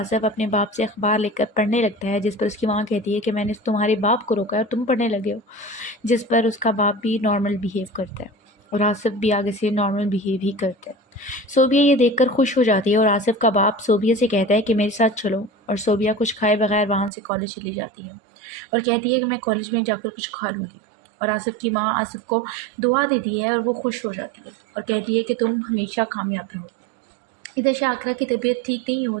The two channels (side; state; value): left; drops out; at 17.1 s